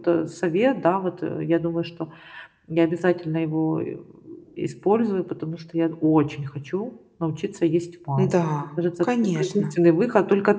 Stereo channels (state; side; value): identical; both; correlation 1.00